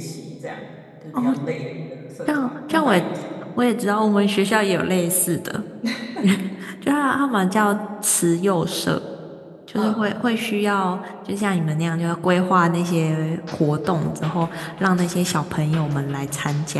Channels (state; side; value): identical; both; correlation 1.00